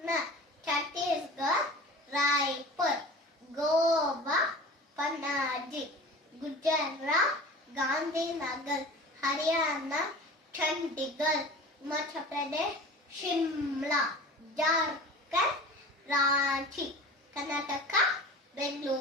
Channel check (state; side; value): normal; both; correlation 0.39